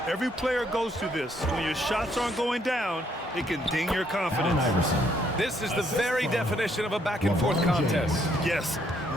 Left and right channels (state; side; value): normal; both; correlation 0.70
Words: Every player goes through this. When your shots aren't going down, it can ding your confidence. This is the very definition of a back-and-forth contest. Yes,